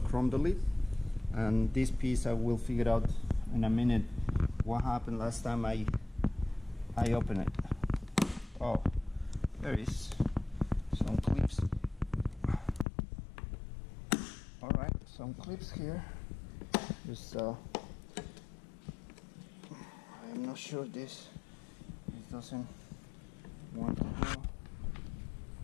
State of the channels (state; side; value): drops out; right; at 12.9 s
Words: delete. And this piece I will figure out in a minute what happened last time I opened it. Oh, there is some clips. All right, some clips here. Just I'm not sure this doesn't want to go.